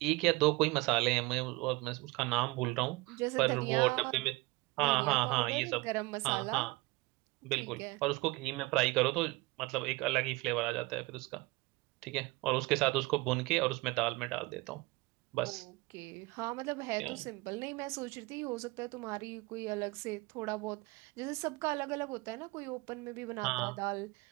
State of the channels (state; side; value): quieter; left; 23.1 dB